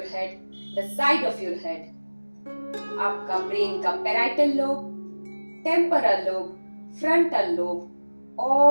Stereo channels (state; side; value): inverted; both; correlation -1.00